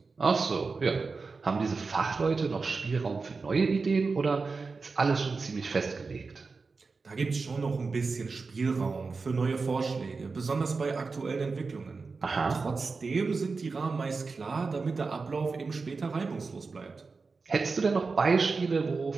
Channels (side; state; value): left; quieter; 4.3 dB